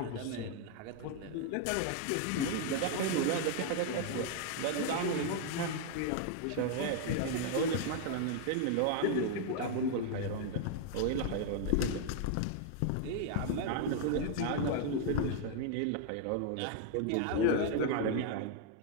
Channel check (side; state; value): both; different; correlation 0.00